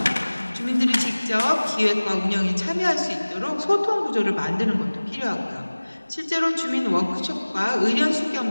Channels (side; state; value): both; inverted; correlation -1.00